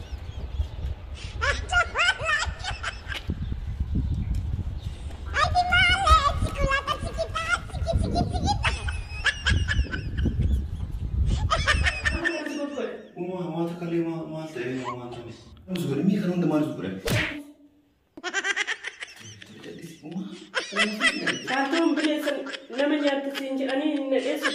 ما تكلم ما تقول ما تقول مزبور مي خلون دمار مزبور كاتم بليسن لما جات تسينج أني نلقي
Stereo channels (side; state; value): both; identical; correlation 1.00